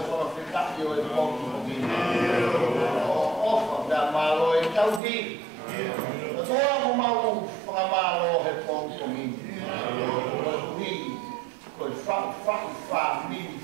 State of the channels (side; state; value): left; drops out; at 5.0 s